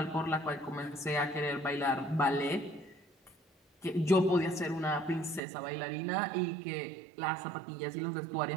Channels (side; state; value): left; drops out; at 5.4 s